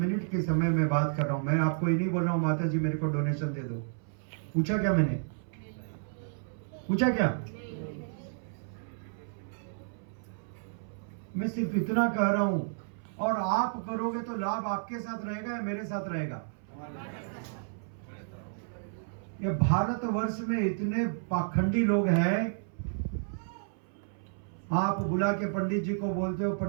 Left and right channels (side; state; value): left; silent; 57 dB below the other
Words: के समय में बात कर रहा हूं। मैं आपको ये नहीं बोल रहा हूं माता जी मेरे को डोनेशन दे दो। पूछा क्या मैंने? पूछा क्या? मैं सिर्फ इतना कह रहा हूं, और आप करोगे तो लाभ आपके साथ रहेगा या मेरे साथ रहेगा? ये भारतवर्ष में इतने पाखंडी लोग हैं। आप बुला के पंडित जी को बोलते हो